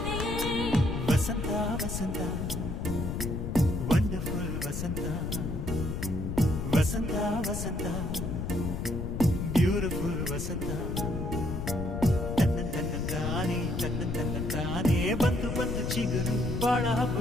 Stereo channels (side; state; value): left; noise; rumble, 3 dB below the sound